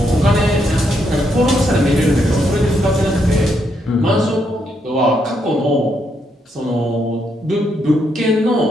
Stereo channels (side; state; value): both; normal; correlation 0.77